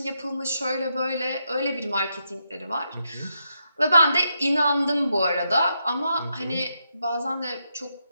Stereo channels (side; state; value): both; inverted; correlation -0.82